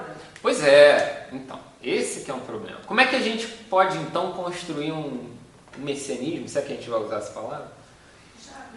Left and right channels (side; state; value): both; identical; correlation 1.00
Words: Pois é, então, esse que é um problema. Como é que a gente pode, então, construir um messianismo, se é que a gente vai usar essa palavra?